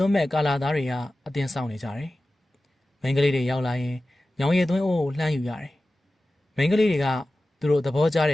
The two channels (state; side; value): normal; both; correlation 0.95